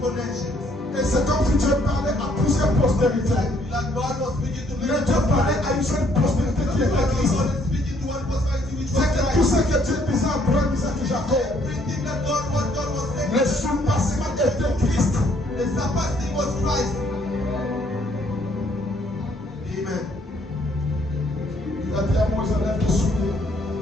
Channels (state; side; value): normal; both; correlation 0.66